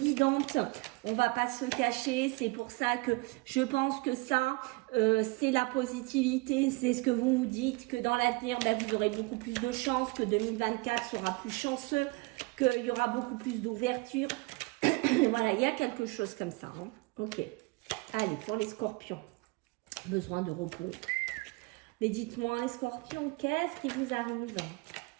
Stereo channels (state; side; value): quieter; left; 25.7 dB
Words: on va pas se cacher. C'est pour ça que je pense que ça, c'est la positivité, c'est ce que vous vous dites, que dans l'avenir, vous aurez beaucoup plus de chance, que 2024 sera plus chanceux, qu'il y aura beaucoup plus d'ouverture. Voilà, il y a quelque chose comme ça. Hein. Ok, allez, pour les scorpions, besoin de repos. Mais dites-moi, les scorpions, qu'est-ce qui vous arrive